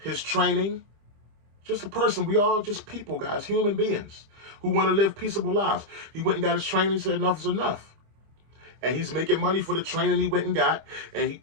his training. Just a person. We all just people, guys, human beings who want to live peaceable lives. He went and got his training, said enough is enough. And he's making money for the training he went and got. And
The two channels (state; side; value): late; left; 25 ms